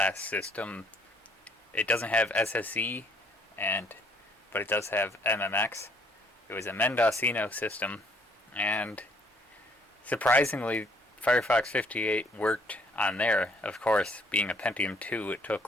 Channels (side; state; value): both; normal; correlation 0.64